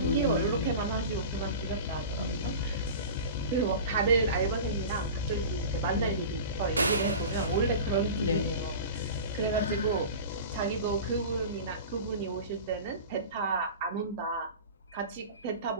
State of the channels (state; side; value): inverted; both; correlation -0.33